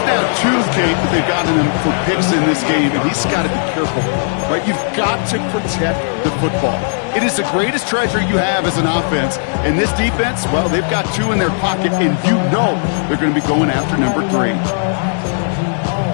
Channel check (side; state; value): right; silent; digital silence